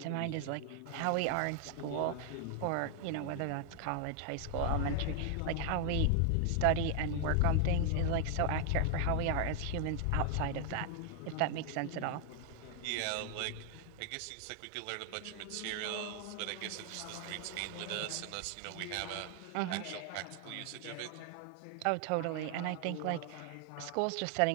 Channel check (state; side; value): different; both; correlation 0.00